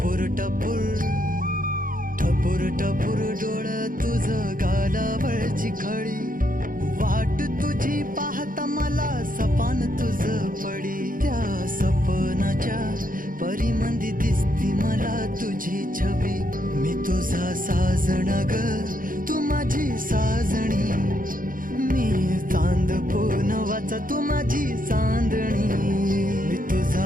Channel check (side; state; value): left; late; 0.40 ms